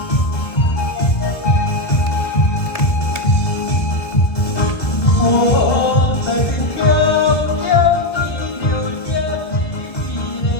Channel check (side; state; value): right; late; 2.0 ms